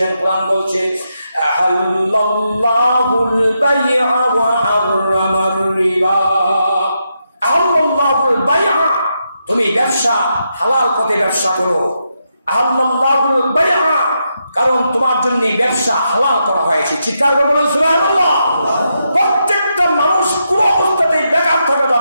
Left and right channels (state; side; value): inverted; both; correlation -0.83